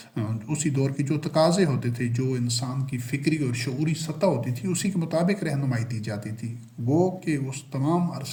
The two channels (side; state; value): both; identical; correlation 1.00